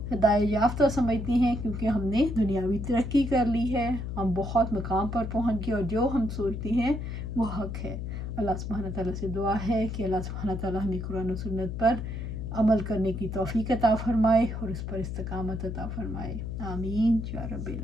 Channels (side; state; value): left; noise; hum, 5 dB below the sound